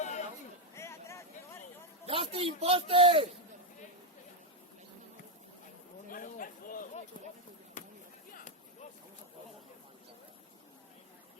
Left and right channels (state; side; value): normal; both; correlation 0.04